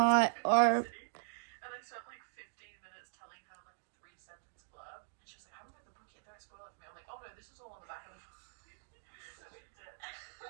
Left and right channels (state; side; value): silent; left; digital silence